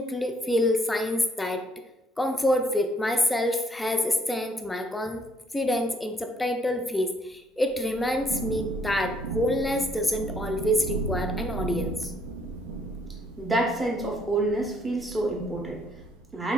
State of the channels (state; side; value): normal; both; correlation 0.67